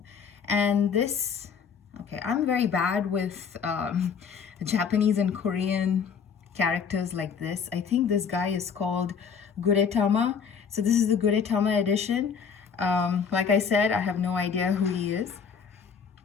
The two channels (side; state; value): right; quieter; 6.5 dB